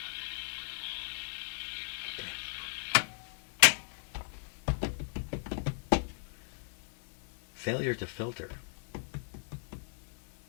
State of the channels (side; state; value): right; silent; digital silence